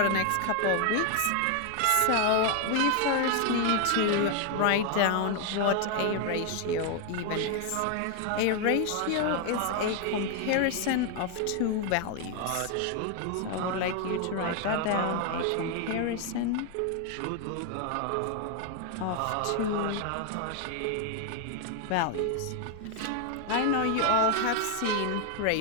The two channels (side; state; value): both; different; correlation 0.01